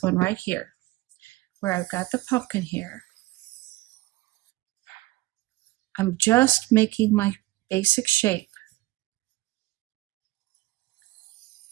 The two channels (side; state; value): left; quieter; 18.6 dB